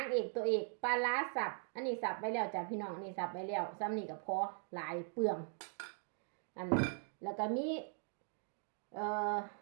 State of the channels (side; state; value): left; silent; 51 dB below the other